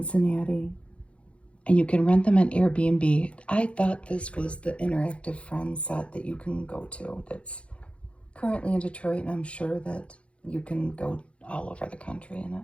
And you can rent them on Airbnb. I thought this was the interactive Friends set that you can go to. That's currently in Detroit, and I'm sure that you can go all over the country in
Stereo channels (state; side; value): late; right; 0.061 ms